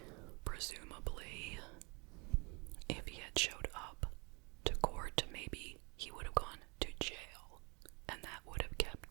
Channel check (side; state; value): left; quieter; 30.3 dB